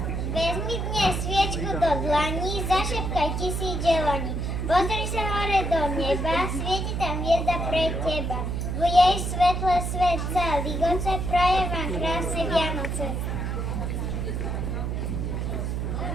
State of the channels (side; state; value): right; noise; hum, 2 dB below the sound